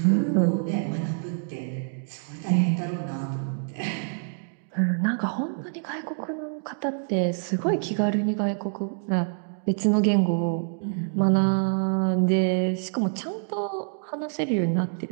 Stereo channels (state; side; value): silent; left; 61 dB below the other